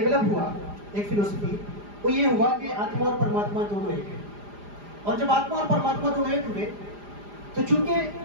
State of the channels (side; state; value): left; late; 4.9 ms